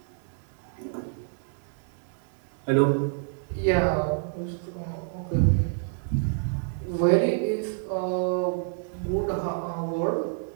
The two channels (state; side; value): silent; left; digital silence